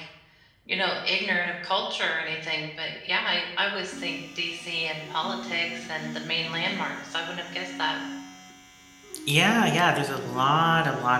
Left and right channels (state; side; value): identical; both; correlation 1.00